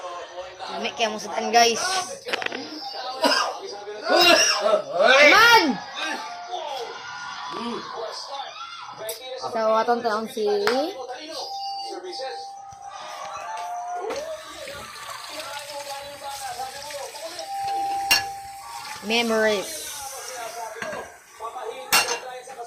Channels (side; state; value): both; identical; correlation 1.00